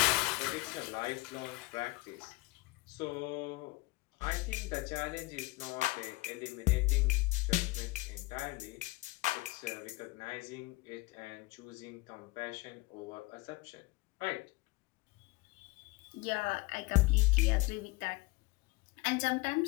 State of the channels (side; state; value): right; quieter; 22.9 dB